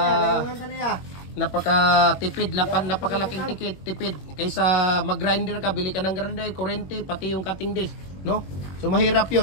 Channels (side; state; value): right; late; 21 ms